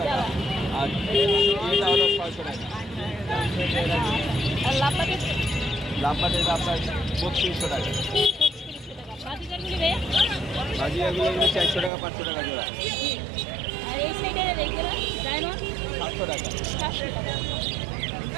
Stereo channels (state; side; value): drops out; left; at 11.9 s